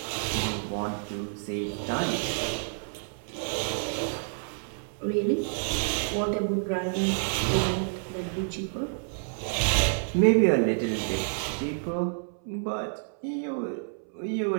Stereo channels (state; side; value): silent; left; 59 dB below the other